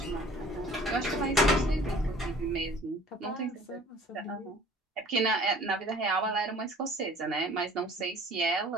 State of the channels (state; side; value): normal; both; correlation 0.50